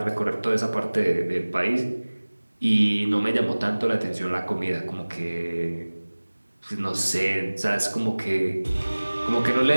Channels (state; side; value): inverted; both; correlation -1.00